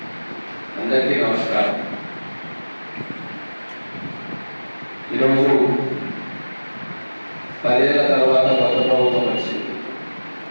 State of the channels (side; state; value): both; inverted; correlation -1.00